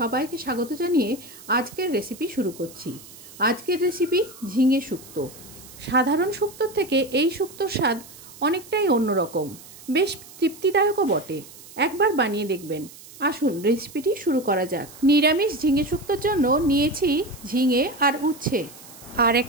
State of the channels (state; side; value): noise; right; hiss, 19 dB below the sound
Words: স্বাগত জানিয়ে আজকের রেসিপি শুরু করছি। আজকের রেসিপি ঝিঙে শুক্তো। সাধারণ শুক্তোর থেকে এই শুক্তোর স্বাদ অনেকটাই অন্যরকম, বেশ তৃপ্তিদায়কও বটে। একবার বানিয়ে দেখবেন। আসুন রেসিপিটি শুরু করা যাক। নিরামিষ ঝিঙে শুক্তোর জন্য নিয়েছি ঝিঙে আর উচ্ছে আর